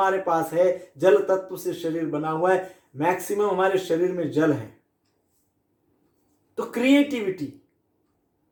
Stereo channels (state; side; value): identical; both; correlation 1.00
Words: पास है, जल तत्व से शरीर बना हुआ है, मैक्सिमम हमारे शरीर में जल है। तो क्रिएटिविटी।